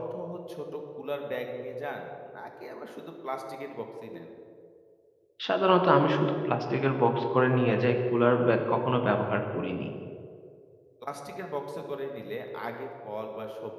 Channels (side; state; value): both; identical; correlation 1.00